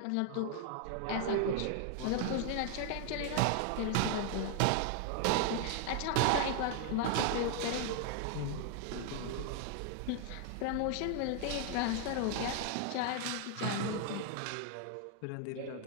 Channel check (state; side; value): different; both; correlation 0.00